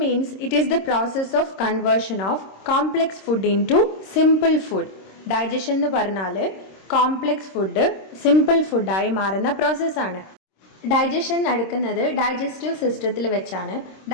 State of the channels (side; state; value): right; late; 26 ms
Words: means it is the process of conversion of complex food into simple food. Digestion എന്ന് പറഞ്ഞാൽ complex food simple ഫുഡായി മാറുന്ന പ്രോസസ്സാണ്. ഡൈജഷൻ നടക്കുന്നത് ഡൈജസ്റ്റീവ് സിസ്റ്റത്തിൽ വെച്ചാണ്.